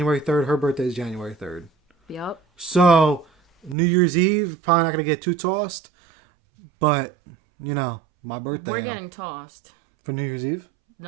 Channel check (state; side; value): drops out; left; at 3.8 s